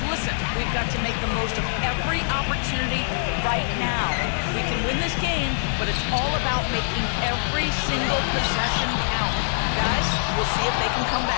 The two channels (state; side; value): silent; right; digital silence